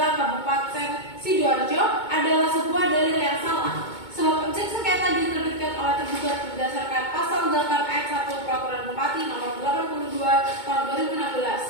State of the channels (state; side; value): late; right; 2.2 ms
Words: Kabupaten Sidoarjo adalah sebuah dalil yang salah. Sebab objek sengketa diterbitkan oleh tergugat berdasarkan pasal 8 ayat 1 Peraturan Bupati nomor 82 tahun